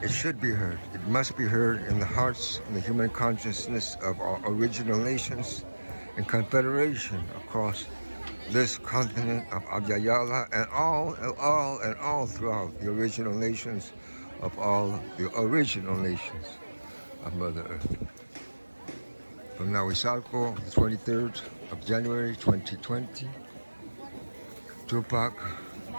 It should be heard. It must be heard in the hearts and the human consciousness of our original nations and confederation across this continent of Abyayala and all throughout the original nations of all the original nations of Mother Earth. From Nahuizalco, the 23rd of January 2020, Tupac,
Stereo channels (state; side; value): inverted; both; correlation -1.00